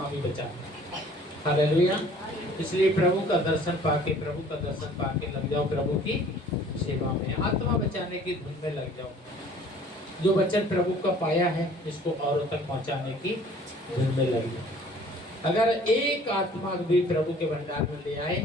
भी बचाता है। हालेलुया। इसलिए प्रभु का दर्शन पाके लग जाओ प्रभु की सेवा में, आत्मा बचाने की धुन में लग जाओ। जो वचन प्रभु का पाया है इसको औरों तक पहुंचाने की धुन में लग जाओ। अगर एक आत्मा भी प्रभु के भंडार में ले आए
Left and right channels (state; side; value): normal; both; correlation 0.52